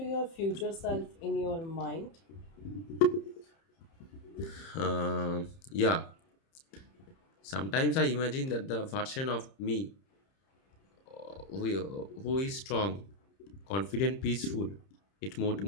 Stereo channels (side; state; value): right; late; 30 ms